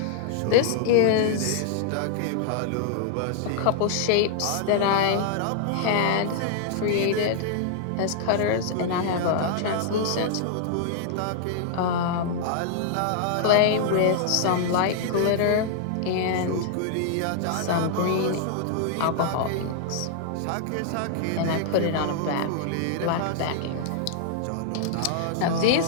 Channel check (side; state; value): both; different; correlation -0.01